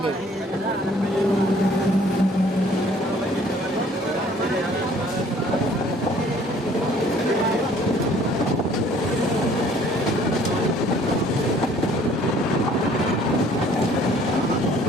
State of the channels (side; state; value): both; normal; correlation 0.56